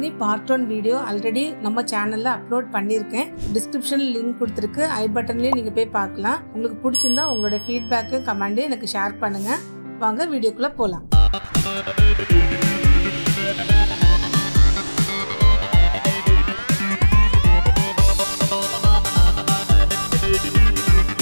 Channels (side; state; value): both; inverted; correlation -1.00